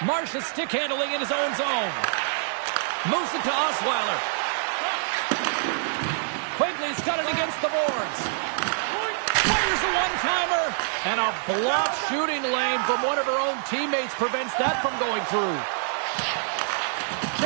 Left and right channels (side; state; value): left; silent; 61 dB below the other